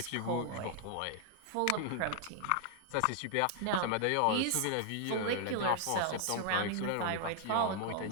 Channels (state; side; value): different; both; correlation 0.00